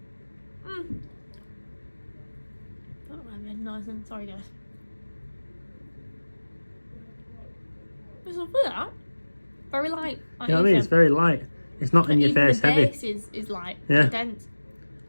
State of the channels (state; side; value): inverted; both; correlation -1.00